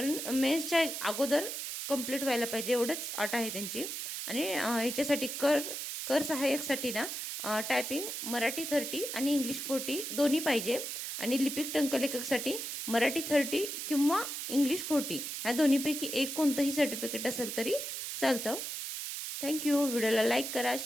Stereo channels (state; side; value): noise; right; hiss, 5 dB below the sound